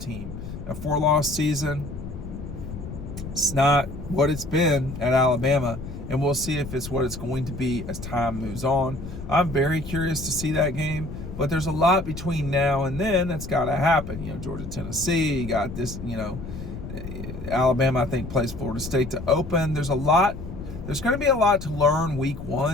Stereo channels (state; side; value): noise; left; rumble, 10 dB below the sound